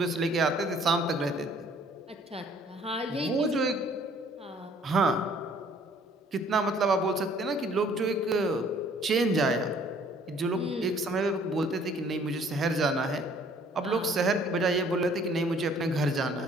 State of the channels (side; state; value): both; normal; correlation 0.58